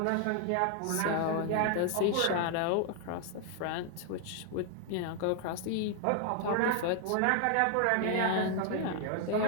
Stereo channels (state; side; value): different; both; correlation 0.00